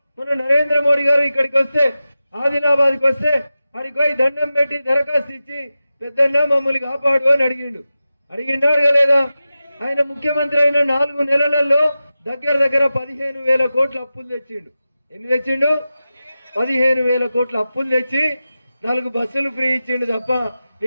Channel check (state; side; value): inverted; both; correlation -0.93